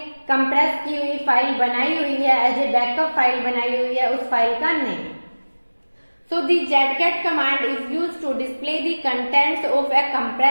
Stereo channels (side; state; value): both; inverted; correlation -1.00